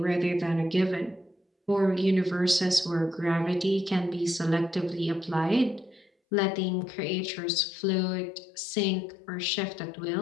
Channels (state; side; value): drops out; right; at 6.1 s